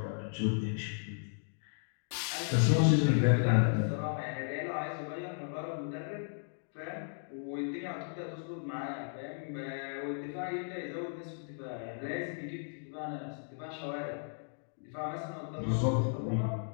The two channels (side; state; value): right; silent; digital silence